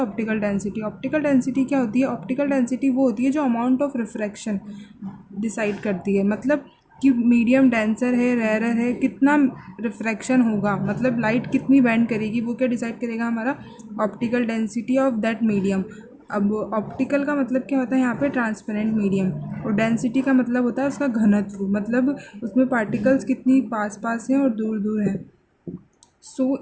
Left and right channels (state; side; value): identical; both; correlation 1.00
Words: डेंसिटी. ऑप्टिकल डेंसिटी क्या होती है, ऑप्टिकल डेंसिटी वो होती है जो अमाउंट ऑफ रिफ्रैक्शन डिसाइड करती है, मतलब कि मीडियम डेंसर है, रेयर है, कितना रिफ्रैक्शन होगा, मतलब लाइट कितनी बैंड करेगी, वो क्या डिसाइड करेगा हमारा, optical density of that medium. अब ऑप्टिकल का मतलब क्या होता है यहाँ पे, ट्रांसपेरेंट मीडियम, और डेंसिटी का मतलब होता है उसका घनत्व, मतलब उसमें पार्टिकल्स कितनी पास पास हैं और दूर दूर हैं.